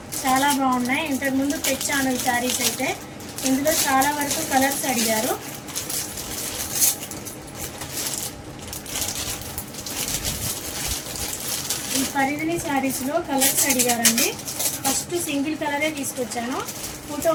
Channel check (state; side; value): identical; both; correlation 1.00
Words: చాలా బాగున్నాయి. ఇంతకుముందు తెచ్చాను ఈ శారీస్ అయితే. ఇందులో చాలా వరకు కలర్స్ అడిగారు. ఈ పరిధిని శారీస్లో కలర్స్ అడిగారండి. ఫస్ట్ సింగిల్ కలరే తీసుకొచ్చాను. ఫోటో